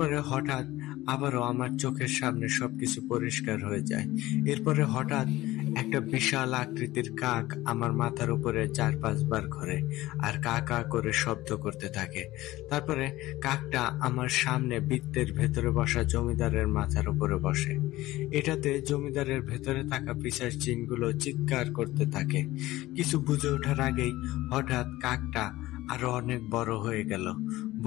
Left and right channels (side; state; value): right; quieter; 17.3 dB